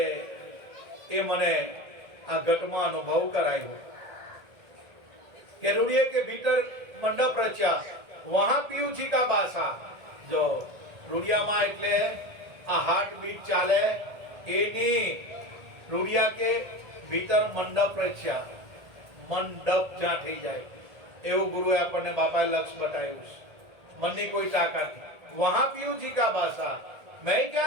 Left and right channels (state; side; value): late; left; 1.8 ms